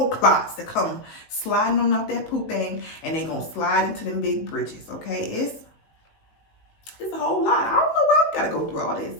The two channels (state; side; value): late; right; 19 ms